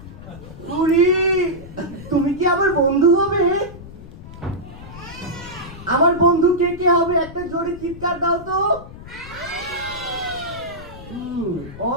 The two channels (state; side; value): noise; left; rumble, 15 dB below the sound